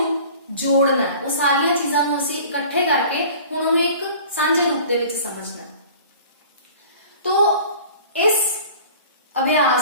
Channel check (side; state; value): both; inverted; correlation -0.45